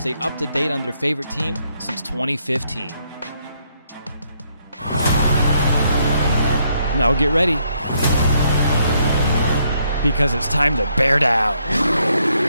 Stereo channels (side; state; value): both; inverted; correlation -0.73